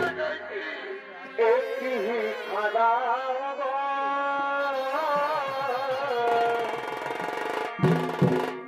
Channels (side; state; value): both; identical; correlation 1.00